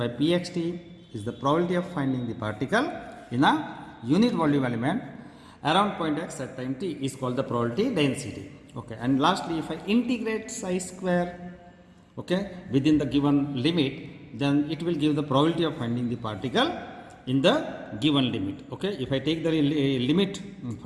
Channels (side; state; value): both; identical; correlation 1.00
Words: pxt is the probability of finding the particle in a unit volume element around point x at time t is called the probability density. Okay. And lastly, if I integrate psi square, okay, within the given limit, then it will give the probability of finding the particle in the given limit. Okay. If I take the limit